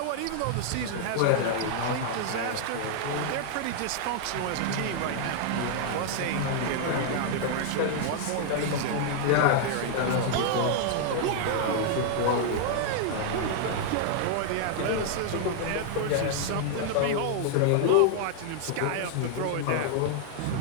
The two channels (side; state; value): both; different; correlation 0.00